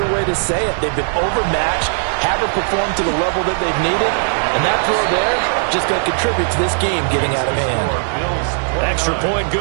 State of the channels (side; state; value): left; silent; 60 dB below the other